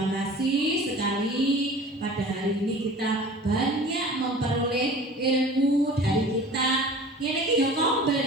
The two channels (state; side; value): normal; both; correlation 0.42